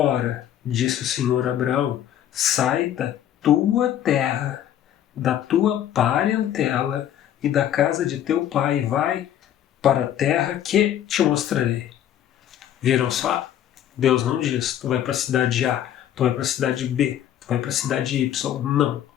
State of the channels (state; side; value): quieter; right; 11.0 dB